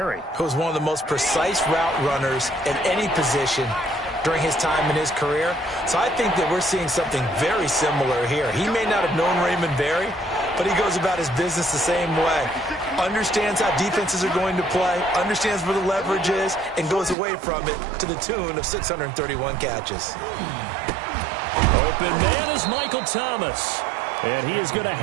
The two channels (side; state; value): left; drops out; at 17.2 s